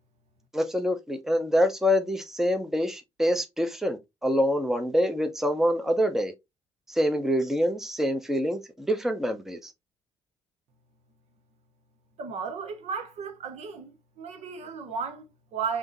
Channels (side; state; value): both; normal; correlation 0.81